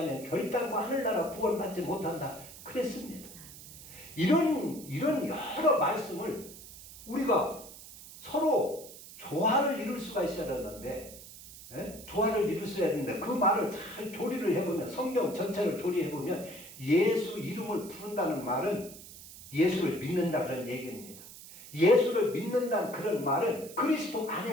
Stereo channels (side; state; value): right; noise; hiss, 16 dB below the sound